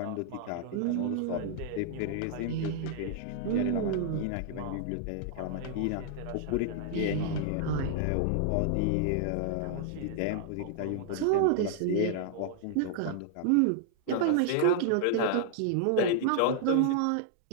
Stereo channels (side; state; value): both; different; correlation -0.01